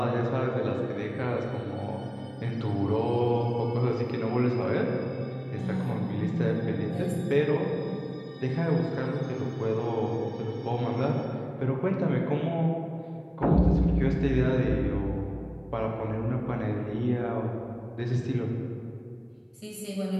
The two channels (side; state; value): both; identical; correlation 1.00